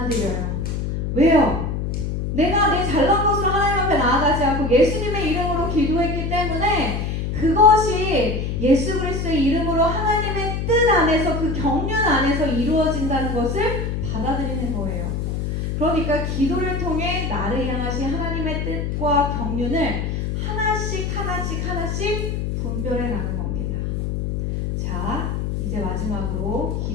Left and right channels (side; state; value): left; noise; hum, 2 dB below the sound